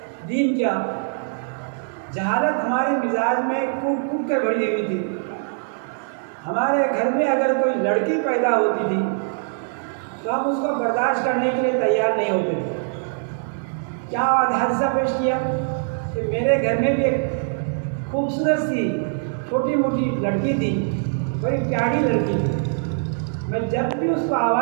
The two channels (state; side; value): silent; left; digital silence